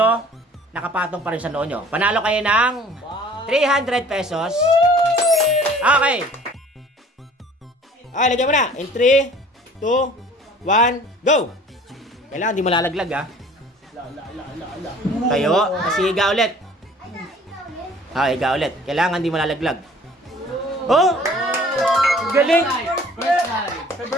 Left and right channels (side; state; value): both; normal; correlation 0.50